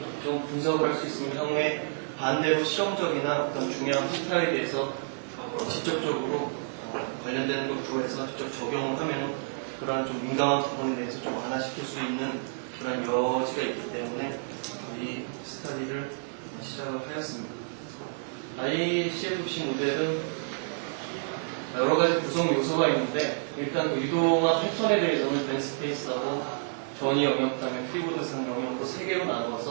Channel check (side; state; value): left; silent; digital silence